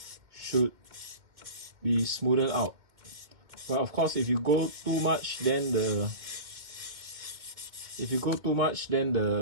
should be smoothed out. But of course, if you go too much, then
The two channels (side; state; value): left; late; 2.1 ms